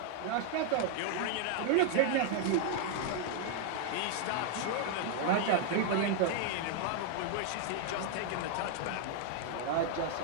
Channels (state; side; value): different; both; correlation 0.00